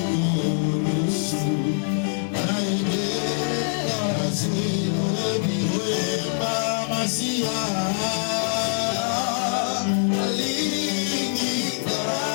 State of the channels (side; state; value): right; silent; digital silence